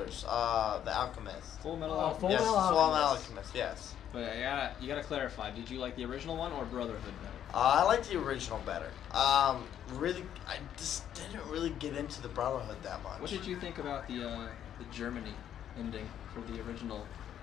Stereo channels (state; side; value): quieter; right; 10.1 dB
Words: the Alchemist. Full Metal Oh, Alchemist. Full Yes, Metal Full Metal Alchemist. Alchemist. Yes. But you gotta clarify. Did you like the original one or Brotherhood better? I like the original better. Really, I just didn't really get into the Brotherhood that much. What did you think about the Germany ending for the original?